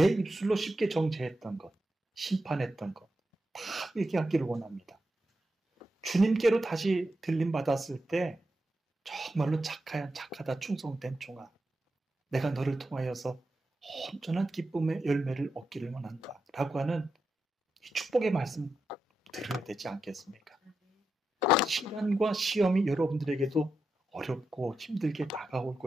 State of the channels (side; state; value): both; normal; correlation 0.88